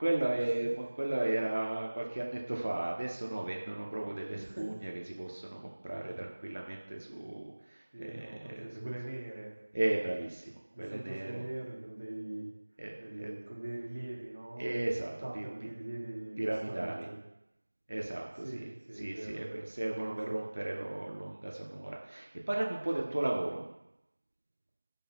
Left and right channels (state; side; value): inverted; both; correlation -1.00